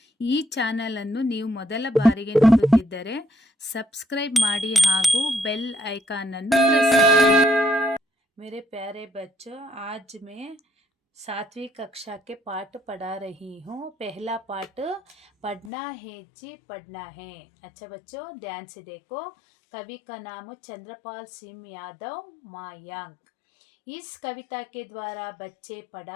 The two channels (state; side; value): drops out; right; at 15.7 s